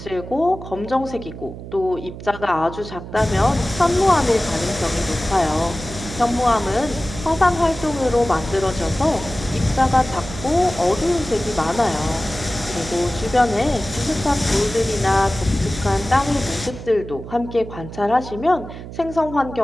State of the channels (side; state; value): right; noise; hum, 12 dB below the sound